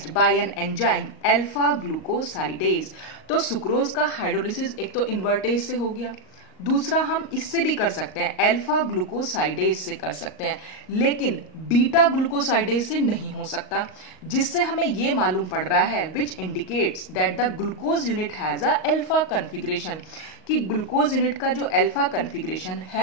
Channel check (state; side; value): late; right; 38 ms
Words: bye an enzyme alpha glucosidase. तो सुक्रोज का हाइड्रोलिसिस एक तो इन्वर्टेज से हो गया, दूसरा हम इससे भी कर सकते हैं, अल्फा ग्लूकोसाइडेज से कर सकते हैं, लेकिन बीटा ग्लूकोसाइडेज से नहीं हो सकता, जिससे हमें यह मालूम पड़ रहा है which indicates that the glucose unit has a alpha configuration, कि ग्लूकोज यूनिट का जो अल्फा कन्फिग्रेशन